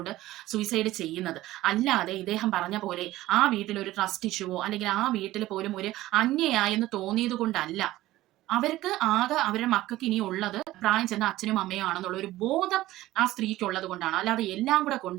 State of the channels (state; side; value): quieter; left; 16.3 dB